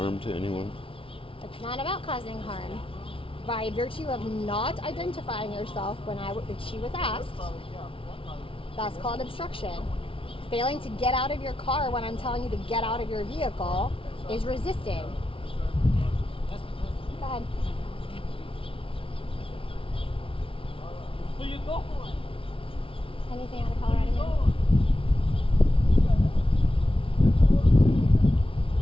to anyone? It's not about causing harm. By virtue of not identifying yourself when she was asked, that's called obstruction. Failing to get out of your car when I'm telling you to get out of your vehicle is resisting. Go ahead. Where you going? Anything out of Colorado? Man?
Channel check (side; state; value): right; late; 0.26 ms